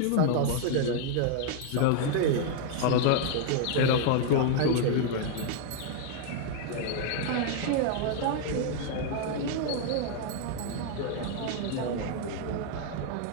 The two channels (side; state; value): both; different; correlation 0.00